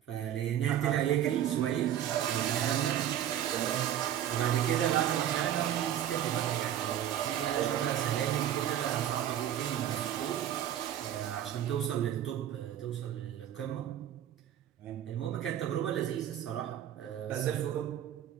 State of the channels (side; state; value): left; quieter; 10.9 dB